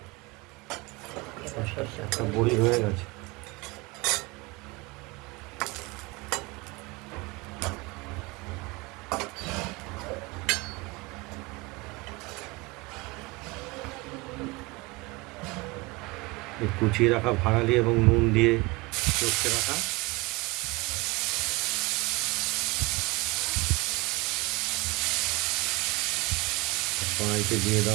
একটা বড়ি হয়ে গেছে। এই কুচিয়ে রাখা ভাড়ালি এবং নুন দিয়ে চটকে রাখা কড়াইতে দিয়ে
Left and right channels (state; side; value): quieter; left; 23.9 dB